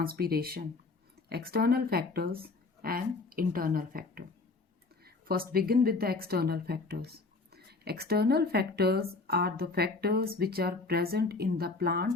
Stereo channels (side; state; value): right; quieter; 3.8 dB